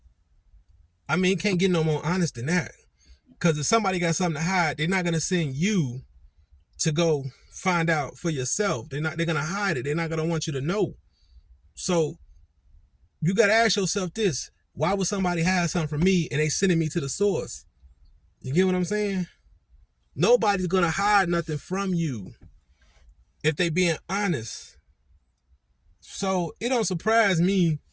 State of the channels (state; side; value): identical; both; correlation 1.00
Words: I mean, can't get no more honest than that. Because if somebody got something to hide, they're not going to send you to go find out for yourself. They're going to hide it. They're not going to want you to know. So you got to ask yourself this. Why would somebody hide something from me and they sending me to the source? You get what I'm saying? Nobody's going to hide nothing from you if they being honest. So it don't surprise me